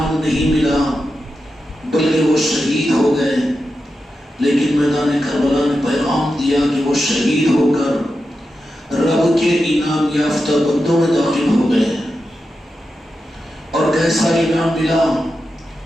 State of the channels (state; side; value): normal; both; correlation 0.90